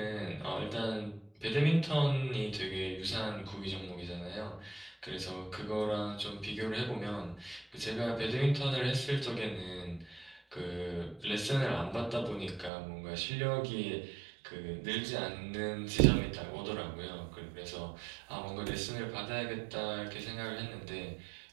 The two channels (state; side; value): drops out; left; at 12.7 s